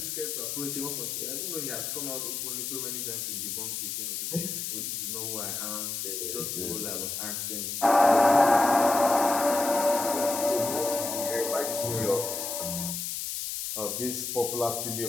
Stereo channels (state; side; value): noise; left; hiss, 4 dB below the sound